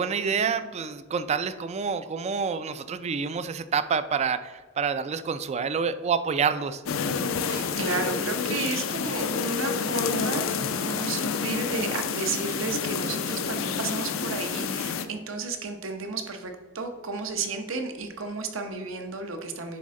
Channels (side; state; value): both; normal; correlation 0.05